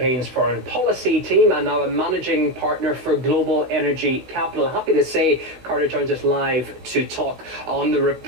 foreign policy team and now a managing partner for Global Energy Capital. Happy to say Carter joins us live to talk on the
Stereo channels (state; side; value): late; left; 16 ms